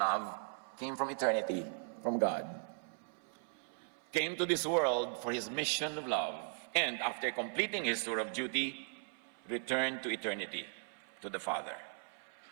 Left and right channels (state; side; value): silent; left; 52 dB below the other